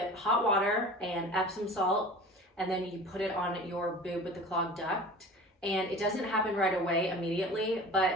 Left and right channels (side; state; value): both; normal; correlation 0.39